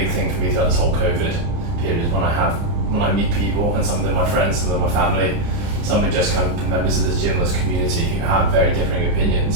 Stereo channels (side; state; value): left; late; 29 ms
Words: thing for me throughout this whole COVID period, is when I meet people, and some of them my friends, some of them my family, some are just kind of members of this gym, this community who have very differing